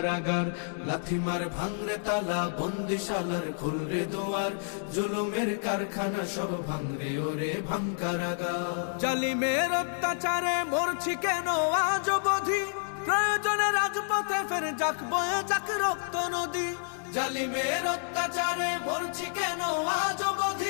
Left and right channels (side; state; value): right; silent; digital silence